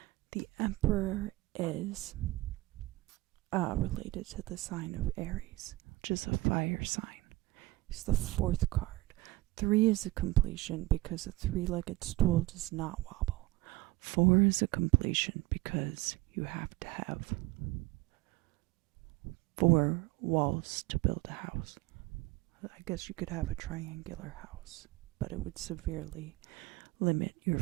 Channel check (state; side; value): quieter; left; 19.6 dB